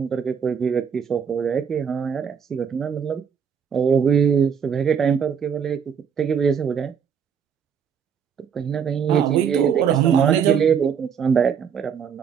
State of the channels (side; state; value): left; quieter; 7.3 dB